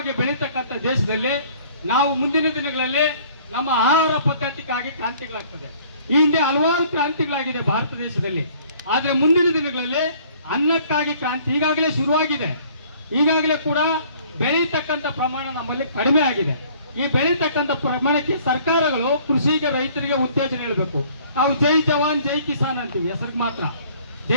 ಬೆಳೀತಕ್ಕಂಥ ದೇಶದಲ್ಲಿ ನಾವು ಮುಂದಿನ ದಿನಗಳಲ್ಲಿ ನಮ್ಮ ಆಹಾರ ಪದ್ಧತಿಗಾಗಿ ಕ್ರಾಂತಿಗಳಾಗ್ತದೆ. ಈ ಹಿಂದೆ ಹಲವಾರು ಕ್ರಾಂತಿಗಳಾಗಿದೆ ಭಾರತ ದೇಶದಲ್ಲಿ, ಆದ್ರೆ ಮುಂದಿನ ದಿನಗಳಲ್ಲಿ ಅನ್ನಕ್ಕಾಗಿ ಕ್ರಾಂತಿ ಈಗಾಗಲೇ ಶುರುವಾಗಿದೆ. ಈಗಾಗಲೇ ಕೂಡ ಬೆಳೀತಕ್ಕಂಥ ಪ್ರಮಾಣ ನಮ್ಮಲ್ಲಿ ಕಡಿಮೆ ಆಗಿದೆ. ಈ ಬೆಳೀತಕ್ಕಂಥ ಪ್ರಮಾಣಕ್ಕೆ ಸರ್ಕಾರಗಳು ಕೃಷಿಗೆ ರೈತರಿಗೆ ಉತ್ತೇಜನ ನೀಡಬೇಕು. ನಾವು ಜೈ ಜವಾನ್ ಜೈ ಕಿಸಾನ್ ಅಂತೀವಿ ಹೆಸರಿಗೆ ಮಾತ್ರ.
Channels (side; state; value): both; inverted; correlation -0.56